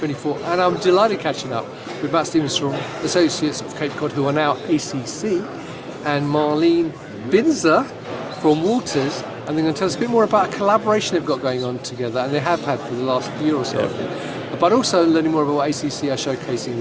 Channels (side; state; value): both; identical; correlation 1.00